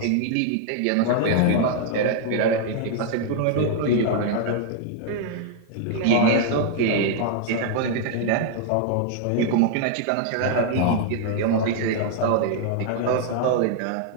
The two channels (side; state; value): both; different; correlation 0.00